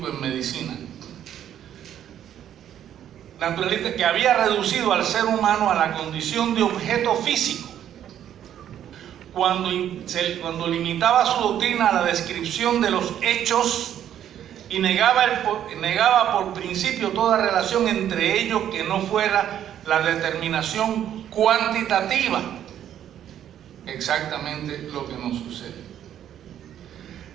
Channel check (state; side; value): quieter; left; 10.5 dB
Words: en medicina. Naturalista que había reducido al ser humano a la condición de objeto físico, cuando limitaba su doctrina a la descripción de los hechos y negaba por principio toda relación entre ellos que no fuera la determinación cuantitativa. Exactamente lo que nos sucede.